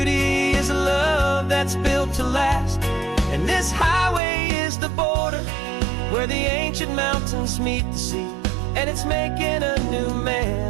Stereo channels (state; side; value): drops out; left; at 4.2 s